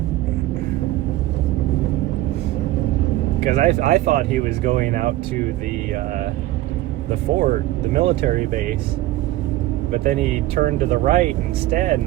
Because I thought he was going out to the fort, the military base, but then he turned to the right instead,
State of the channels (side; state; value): left; quieter; 16.1 dB